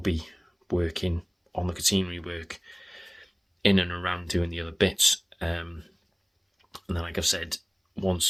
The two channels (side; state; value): both; identical; correlation 1.00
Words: working on the catenary work in and around doing the other bits, and then, like I've said,